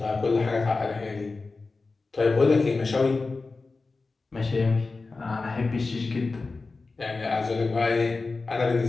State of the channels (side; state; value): right; quieter; 3.8 dB